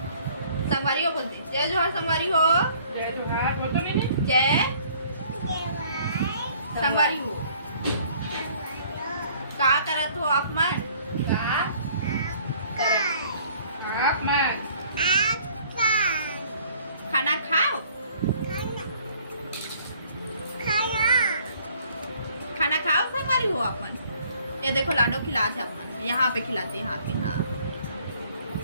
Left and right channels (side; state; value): both; inverted; correlation -0.57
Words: संगवारी हो बोलते जय जोहार। संगवारी हो जय जोहार बोल तो नहीं। जय संगवारी हो। का करत हो आप मन? आप मन खाना खाओ। खाना खाओ संगवारी हो आप मन। ये देखो लाडो खिलाते अपन, यहाँ पे खिलाते, यहाँ पे। हाँ